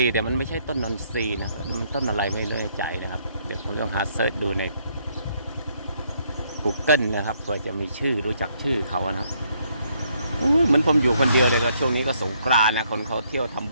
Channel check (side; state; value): both; inverted; correlation -0.70